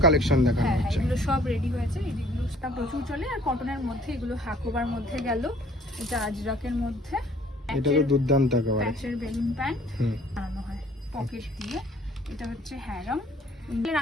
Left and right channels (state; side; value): normal; both; correlation 0.56